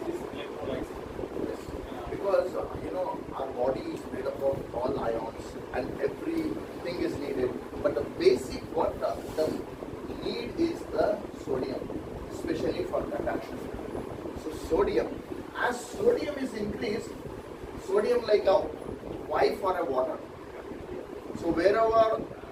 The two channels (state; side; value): identical; both; correlation 1.00